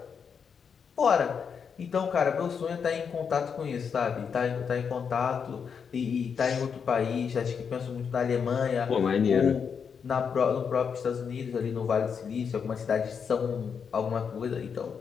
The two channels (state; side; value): quieter; right; 6.6 dB